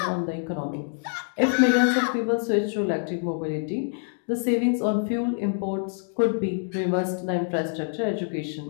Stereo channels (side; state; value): right; silent; 61 dB below the other